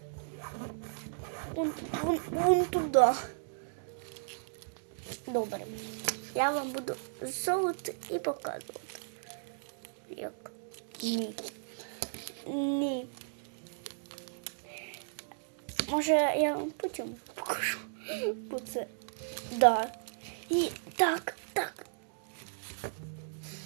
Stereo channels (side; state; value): left; silent; digital silence